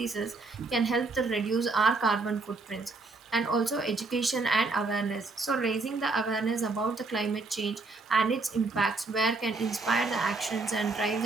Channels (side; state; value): left; quieter; 3.6 dB